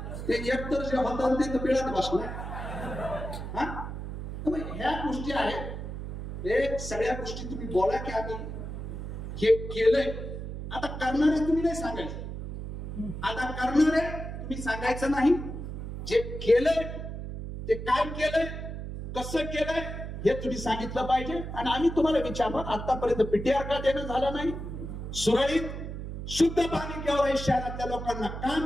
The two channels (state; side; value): noise; right; hum, 7 dB below the sound